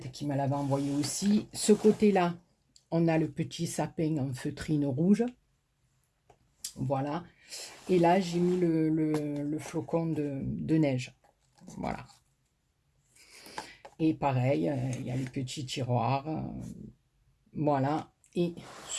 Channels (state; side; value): identical; both; correlation 1.00